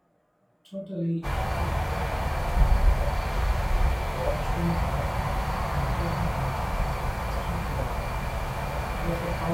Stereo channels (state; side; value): identical; both; correlation 1.00